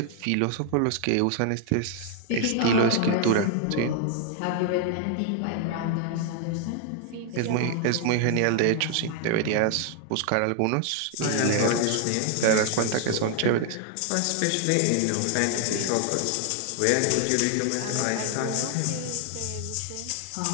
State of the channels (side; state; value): both; different; correlation 0.00